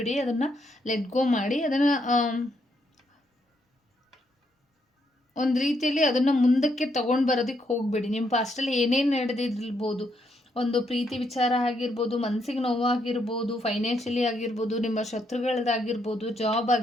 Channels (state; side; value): normal; both; correlation 0.76